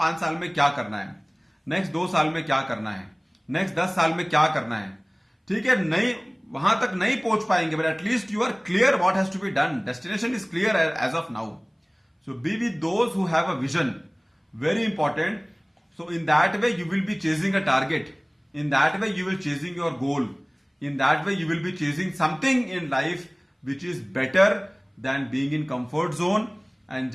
साल में क्या करना है, next 2 साल में क्या करना है, next 10 साल में क्या करना है. ठीक है, नहीं वहां तक नहीं पहुंच पाएंगे, but at least you are clear what has to be done. Destination is clear as of now. So be with those who have a vision. Very important. So in that way you will be chasing a target. In that way you will chasing your goal. In that way you will be chasing something in life which is better than being in comfort zone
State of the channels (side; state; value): both; identical; correlation 1.00